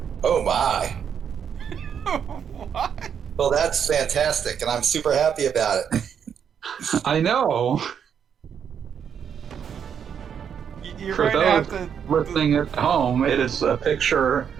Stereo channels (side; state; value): left; quieter; 7.9 dB